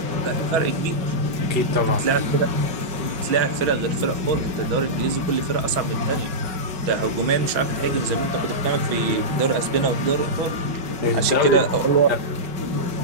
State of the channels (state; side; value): late; left; 5.4 ms